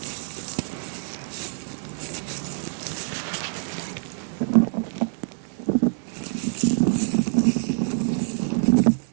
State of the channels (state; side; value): silent; left; 61 dB below the other